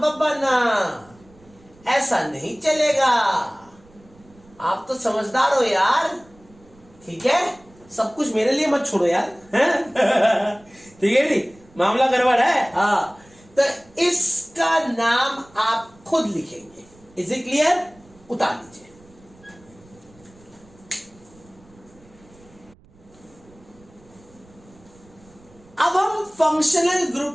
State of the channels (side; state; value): right; noise; rumble, 27 dB below the sound